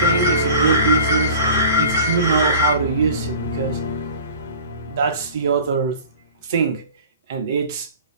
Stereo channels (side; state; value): both; inverted; correlation -0.42